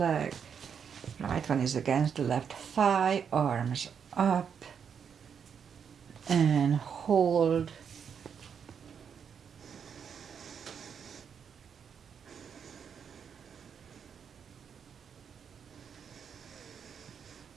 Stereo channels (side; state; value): left; quieter; 7.2 dB